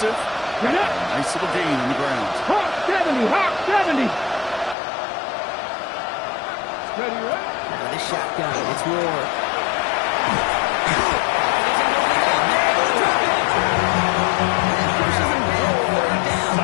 Nice little gain on the ground. Hawk 70. Ready. With a shotgun, it's Ward.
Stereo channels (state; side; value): drops out; right; at 4.8 s